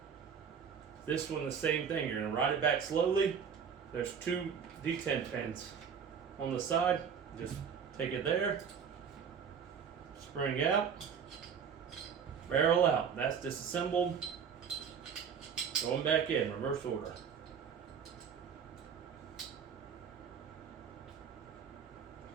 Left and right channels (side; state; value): left; quieter; 7.1 dB